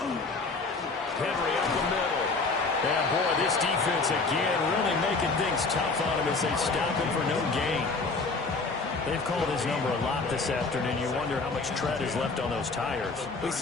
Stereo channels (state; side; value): quieter; right; 3.9 dB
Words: up the middle. And boy, this defense again really making things tough on him as they stop him for no gain. They've called his number a lot this afternoon. You wonder how much tread is left on those tires. We